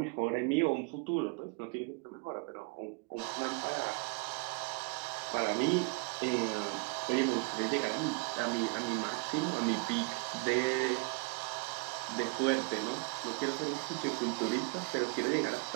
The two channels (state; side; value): quieter; left; 31.8 dB